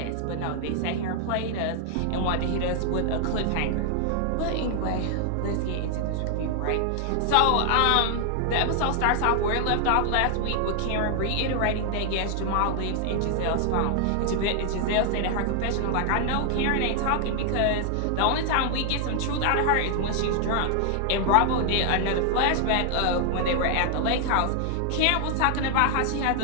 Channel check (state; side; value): different; both; correlation 0.00